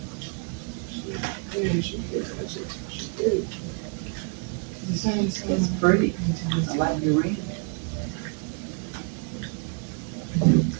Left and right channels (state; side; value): quieter; left; 39.5 dB